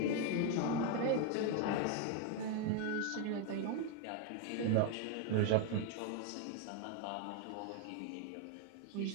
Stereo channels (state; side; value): different; both; correlation 0.01